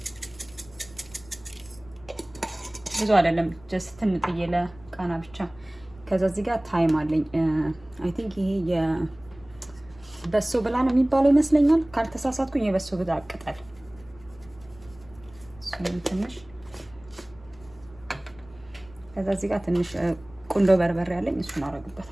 ብዙ አይደለም፣ ጀስት ትንጥዬ ለቃና ብቻ። ከዛ እዚህ ጋር ታይም አለኝ። አይ ቲንክ ይሄ የበሶ ብላ ነው የሚባለው ይመስለኛል፣ ካልተሳሳትኩኝ። የበሶ ብላ ቅጠል እሱን ትንሽ። ከዛ እዚህ ጋር ትንሽ ቁንዶ በርበሬ አለኝ፣ እሱን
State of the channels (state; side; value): noise; left; rumble, 23 dB below the sound